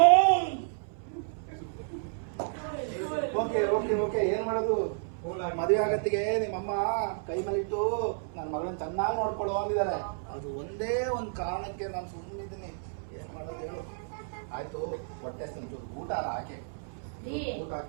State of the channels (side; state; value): left; silent; 57 dB below the other